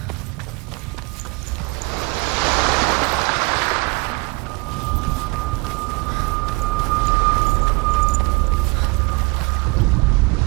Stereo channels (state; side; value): quieter; left; 26.9 dB